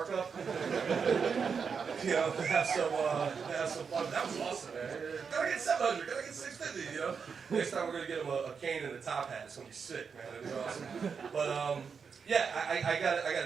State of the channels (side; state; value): left; quieter; 6.0 dB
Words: Have some fun. That was awesome, man. Gotta get 700. Gotta get 650. Next time we're gonna get them a cane and a top hat. It's gonna be sick, man. It'll be awesome. But yeah, I